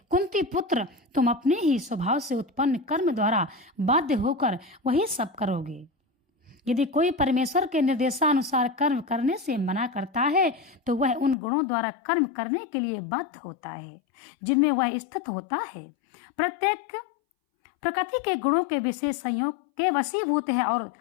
कुंती पुत्र, तुम अपने ही स्वभाव से उत्पन्न कर्म द्वारा बाध्य होकर वही सब करोगे। यदि कोई परमेश्वर के निर्देशानुसार कर्म करने से मना करता है तो वह उन गुणों द्वारा कर्म करने के लिए बाध्य होता है जिनमें वह स्थित होता है। प्रत्येक प्रकृति के गुणों के विशेष संयोग के वशीभूत है और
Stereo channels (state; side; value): drops out; right; at 11.4 s